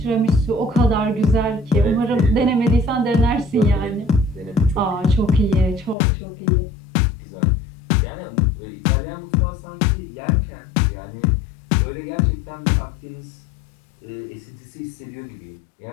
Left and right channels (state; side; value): drops out; right; at 6.0 s